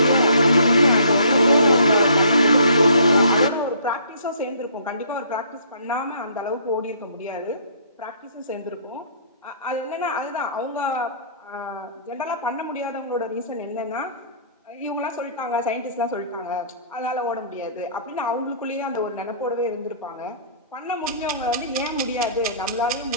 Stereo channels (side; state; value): both; inverted; correlation -0.57